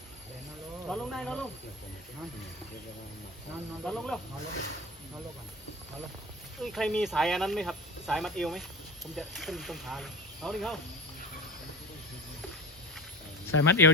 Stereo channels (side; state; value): both; normal; correlation 0.31